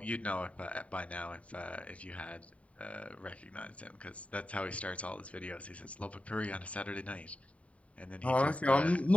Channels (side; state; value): right; late; 0.066 ms